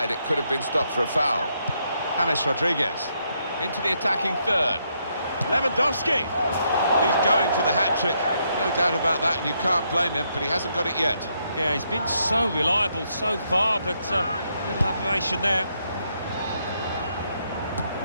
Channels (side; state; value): both; inverted; correlation -0.76